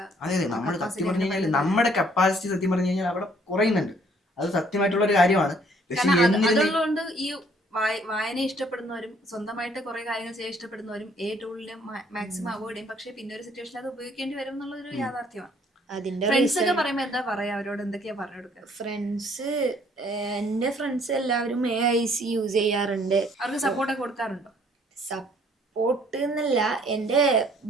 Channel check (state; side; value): normal; both; correlation 0.62